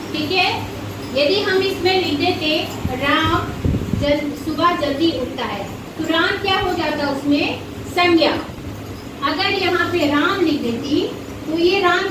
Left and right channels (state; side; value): identical; both; correlation 1.00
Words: ठीक है, यदि हम इसमें लिख देते राम सुबह जल्दी उठता है तो राम क्या हो जाता उसमें? संज्ञा। अगर यहाँ पे राम लिख देती तो ये राम